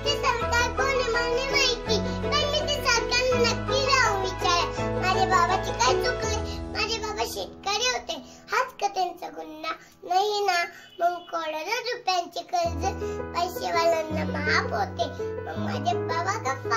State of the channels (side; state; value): both; identical; correlation 1.00